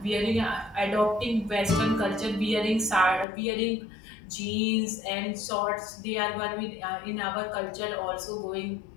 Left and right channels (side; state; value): right; drops out; at 3.2 s